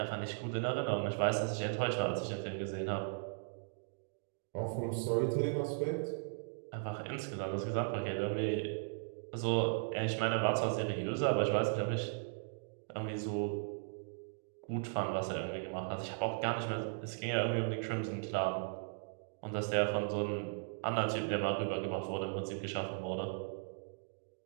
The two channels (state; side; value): silent; left; digital silence